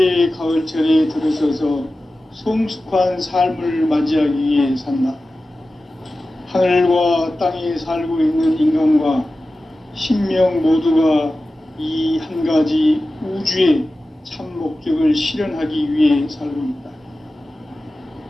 가을철에 들어서서 성숙한 삶을 맞이하기 위해 산다. 하늘과 땅에 살고 있는 인간과 신명 모두가 이 한 가지 우주의 참 목적을 실현하기 위해 살고 있다.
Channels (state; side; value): normal; both; correlation 0.95